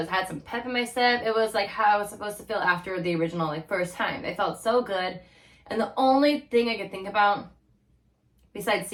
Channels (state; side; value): identical; both; correlation 1.00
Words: some pep in my step. It was like how I was supposed to feel after the original, like first time. It felt so good. And the only thing I could think about, besides